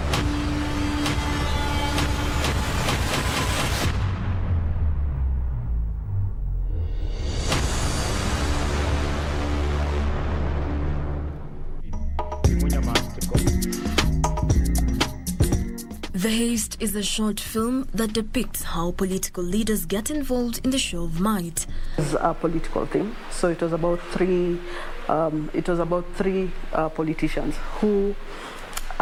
The Heist is a short film that depicts how political leaders get involved in the show of might. It's a political thing, so it was about three politicians who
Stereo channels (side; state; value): both; identical; correlation 1.00